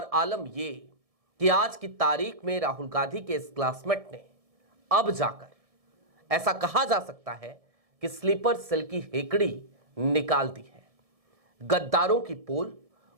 आलम यह कि आज की तारीख में राहुल गांधी के इस क्लासमेट ने अब जाकर ऐसा कहा जा सकता है कि स्लीपर सेल की हेकड़ी निकाल दी है। गद्दारों की पोल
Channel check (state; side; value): late; left; 1.7 ms